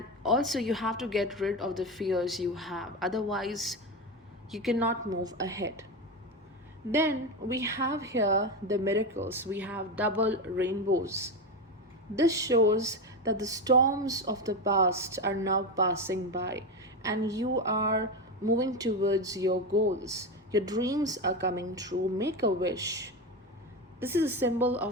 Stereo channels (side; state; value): both; normal; correlation 0.17